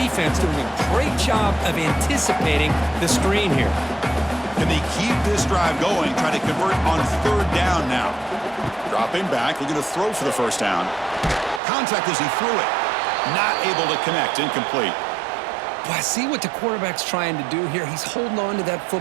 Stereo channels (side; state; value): left; drops out; at 11.6 s